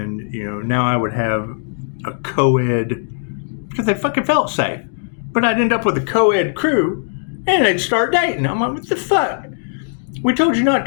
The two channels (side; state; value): right; silent; digital silence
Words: now I would have a co-ed, because they fucking felt safe. But I'd end up with a co-ed crew, and they'd start dating. I'm like, what the fuck? We told you not